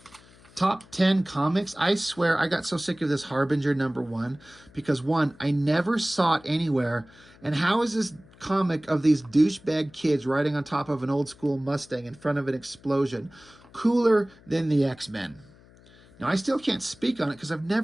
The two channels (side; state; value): left; noise; hum, 26 dB below the sound